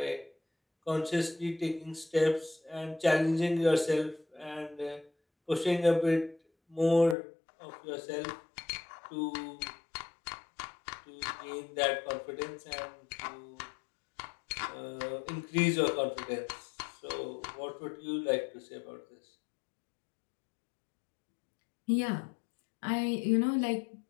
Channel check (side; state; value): right; drops out; at 7.2 s